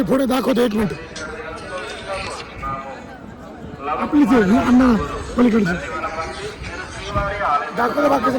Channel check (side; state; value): both; identical; correlation 1.00